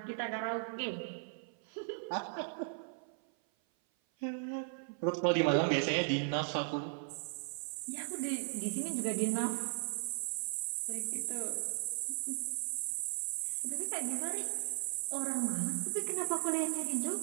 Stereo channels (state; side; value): silent; left; 53 dB below the other